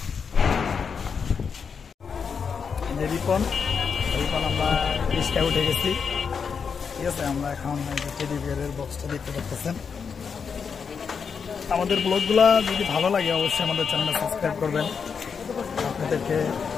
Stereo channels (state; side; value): quieter; right; 6.1 dB